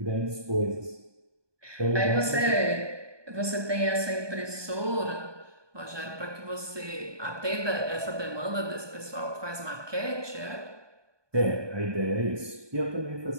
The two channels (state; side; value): late; left; 1.2 ms